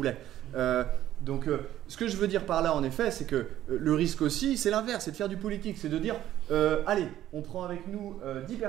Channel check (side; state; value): left; quieter; 12.7 dB